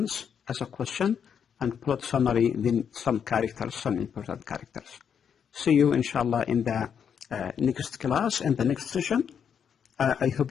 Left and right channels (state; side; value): quieter; right; 7.6 dB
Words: as a question, and plot summary, then some characters, some important characters. See you, inshallah, in the next class, in the next session. I hope